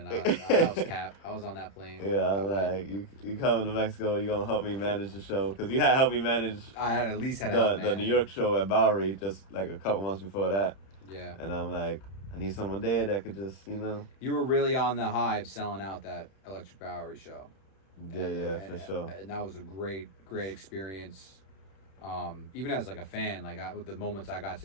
I was capped. I was on that plane. Yeah, I'm like, you coming to Mexico, you gonna help me manage the show, because you had helped me manage. I had at least had help, man. The New York show at Bowery just like a couple months before that. Yeah. And I'm like, I need someone there that could just, You were really on the high of selling out that Electric Bowery show. For sure. And that was a great experience. Even as like a fan, like with the moments I got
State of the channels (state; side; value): late; right; 31 ms